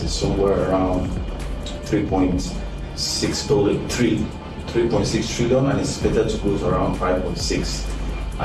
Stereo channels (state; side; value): identical; both; correlation 1.00